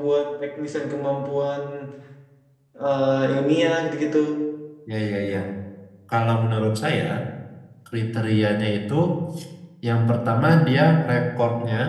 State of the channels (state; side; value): identical; both; correlation 1.00